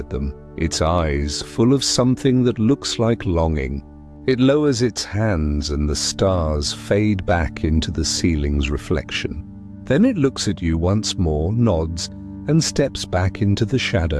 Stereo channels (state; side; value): identical; both; correlation 1.00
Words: them, its eyes full of something that looks like longing. It lowers its hands and the stars fade back into the ceiling's reflection. Then it looks at you once more, nods, and steps back into the